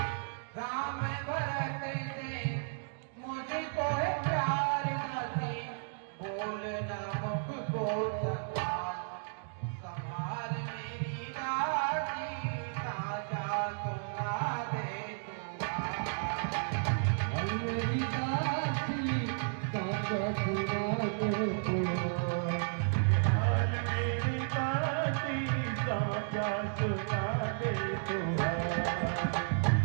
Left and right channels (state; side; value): silent; left; digital silence